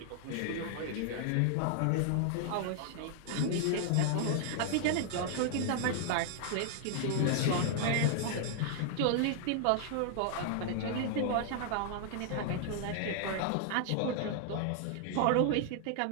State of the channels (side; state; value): both; different; correlation 0.00